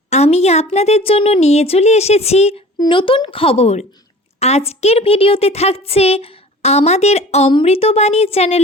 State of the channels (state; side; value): normal; both; correlation 0.43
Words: আমি আপনাদের জন্য নিয়ে চলে এসেছি নতুন খবর। আজকের ভিডিওতে থাকছে আমাদের অমৃতবাণী